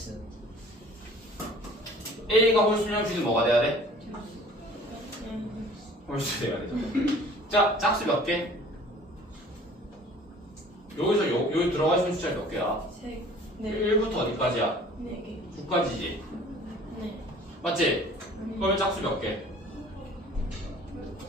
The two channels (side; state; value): both; normal; correlation 0.49